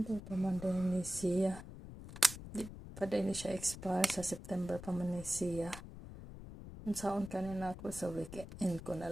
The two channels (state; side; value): noise; left; rumble, 12 dB below the sound